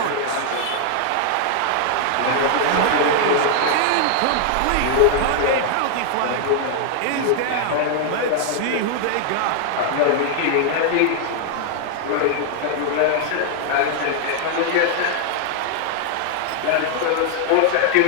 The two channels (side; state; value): both; different; correlation 0.00